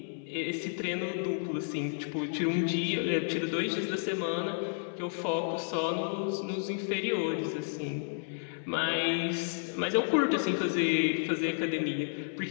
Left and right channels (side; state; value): right; silent; 57 dB below the other